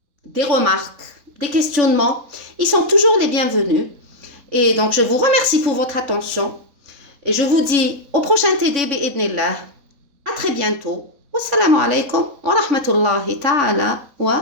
des remarques, des questionnements, ils sont toujours les bienvenus. Et donc, je vous remercie pour votre attention. Et je vous dis au prochain TD bi'idnillah. À très bientôt. Wassalamu alaikum wa rahmatullahi ta'ala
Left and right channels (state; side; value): late; left; 3.5 ms